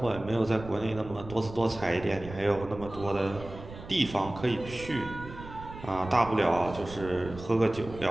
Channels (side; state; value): right; noise; rumble, 14 dB below the sound